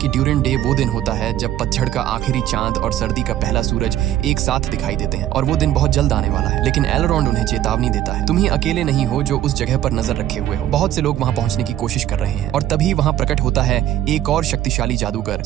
ड्यूरिन डे वो दिन होता है जब पतझड़ का आखिरी चांद और सर्दी का पहला सूरज एक साथ दिखाई देते हैं और वो दिन बहुत जल्द आने वाला है। लेकिन एलरॉन्ड उन्हें चेतावनी देता है, तुम ही अकेले नहीं हो जो उस जगह पर नजर रखे हुए हो, बहुत से लोग वहाँ पहुंचने की कोशिश कर रहे हैं। और तभी वहाँ प्रकट होता है एक और शक्तिशाली जादूगर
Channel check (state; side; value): quieter; left; 12.5 dB